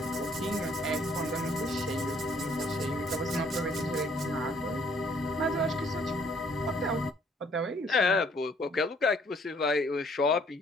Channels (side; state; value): both; normal; correlation 0.63